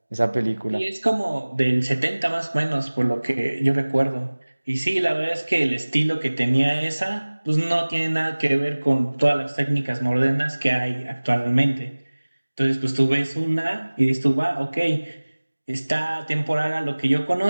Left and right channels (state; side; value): inverted; both; correlation -1.00